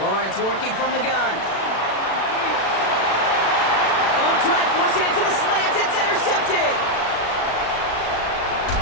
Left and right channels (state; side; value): late; right; 36 ms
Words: Lawrence working from the gun. Oh, try forcing it to the slant. It's intercepted.